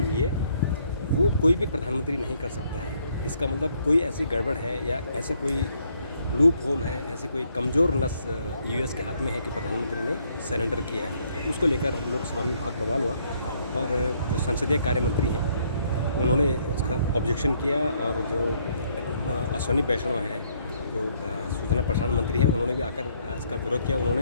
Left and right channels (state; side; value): inverted; both; correlation -0.69